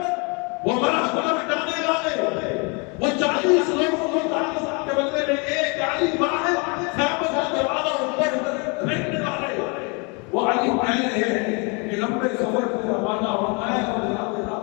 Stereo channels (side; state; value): right; quieter; 32.5 dB